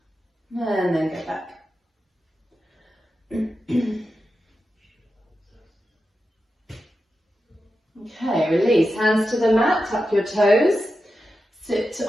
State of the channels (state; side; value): normal; both; correlation 0.90